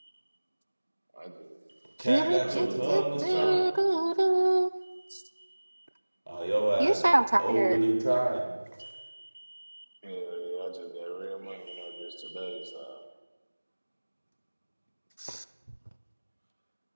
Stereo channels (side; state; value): both; inverted; correlation -1.00